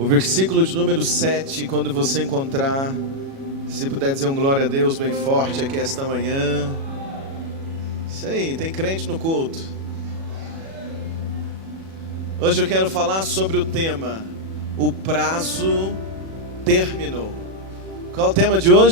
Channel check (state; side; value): late; left; 37 ms